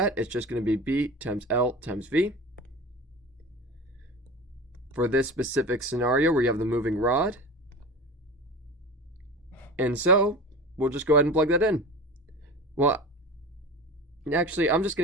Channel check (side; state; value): both; normal; correlation 0.32